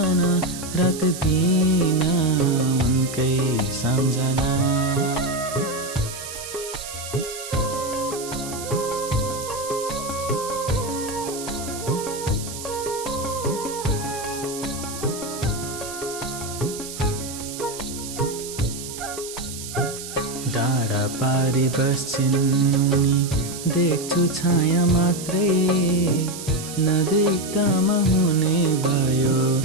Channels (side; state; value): right; noise; hiss, 10 dB below the sound